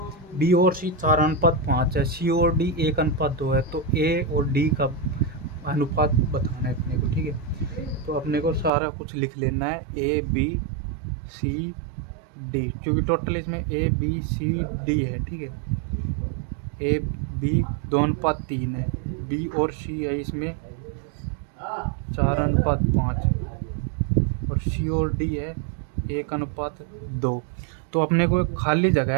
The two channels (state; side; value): drops out; left; at 8.7 s